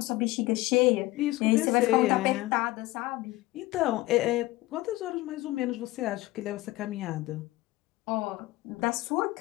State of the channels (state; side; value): quieter; right; 18.7 dB